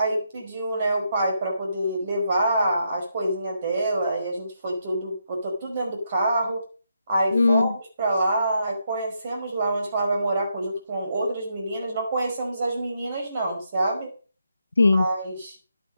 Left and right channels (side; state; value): both; inverted; correlation -0.80